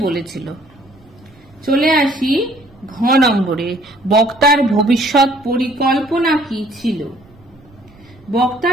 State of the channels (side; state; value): right; noise; rumble, 27 dB below the sound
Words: বলেছিল। চলে আসি ঘ নম্বরে। বক্তার ভবিষ্যৎ পরিকল্পনা কি ছিল?